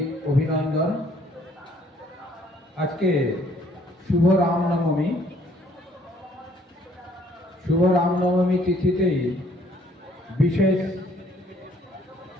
অভিনন্দন। আজকে শুভ রামনবমী। শুভ রামনবমী তিথিতেই বিশেষ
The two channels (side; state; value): both; normal; correlation 0.62